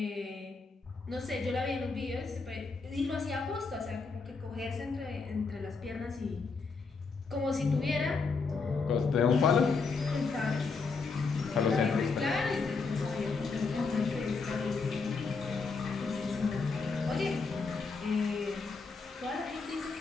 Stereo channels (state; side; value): quieter; right; 4.5 dB